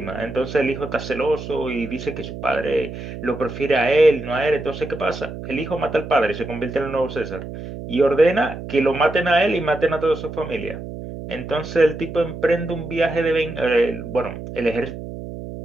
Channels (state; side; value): noise; right; hum, 10 dB below the sound